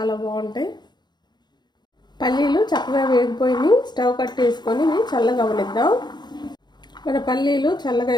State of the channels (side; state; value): right; late; 0.21 ms